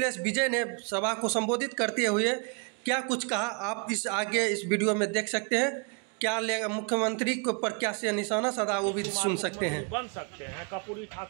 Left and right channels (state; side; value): quieter; left; 33.7 dB